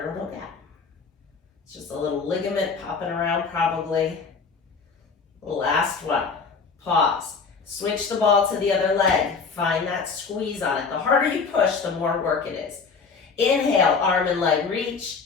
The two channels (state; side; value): quieter; right; 5.1 dB